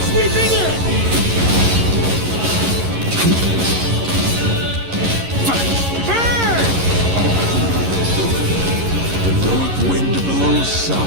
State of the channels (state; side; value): late; left; 11 ms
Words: sweeping in! Burn! The north wind blows